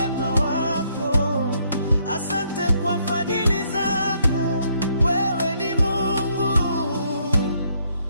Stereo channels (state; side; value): inverted; both; correlation -0.70